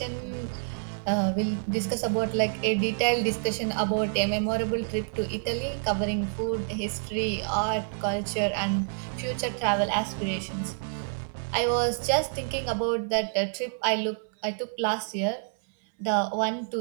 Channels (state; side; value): silent; left; 59 dB below the other